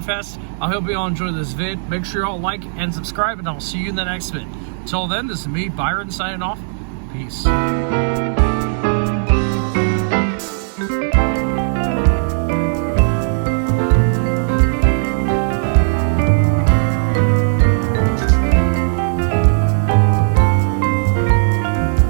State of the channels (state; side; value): silent; left; digital silence